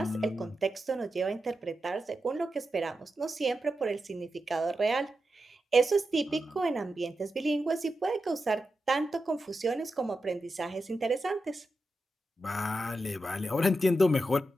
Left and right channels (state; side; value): normal; both; correlation 0.89